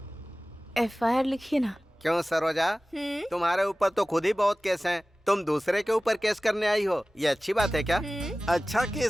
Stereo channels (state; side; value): normal; both; correlation 0.97